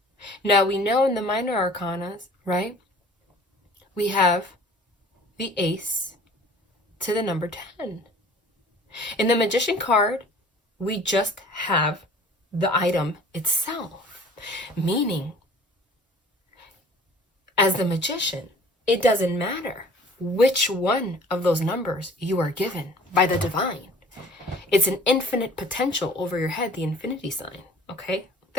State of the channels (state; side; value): normal; both; correlation 0.49